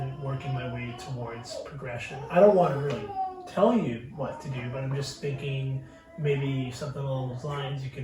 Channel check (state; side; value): identical; both; correlation 1.00